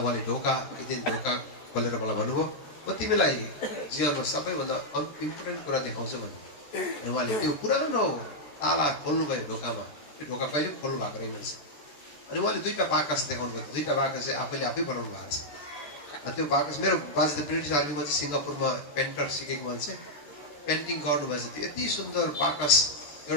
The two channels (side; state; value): right; late; 14 ms